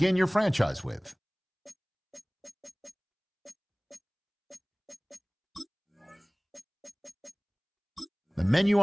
your franchise with. The menu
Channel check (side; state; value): both; identical; correlation 1.00